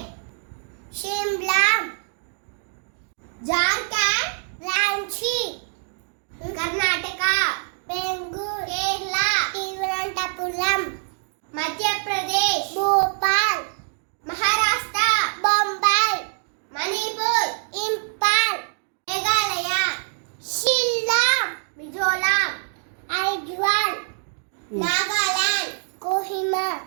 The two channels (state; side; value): silent; left; 58 dB below the other